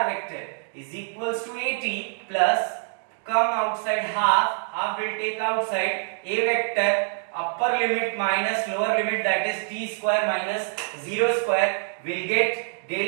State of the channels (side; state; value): left; silent; digital silence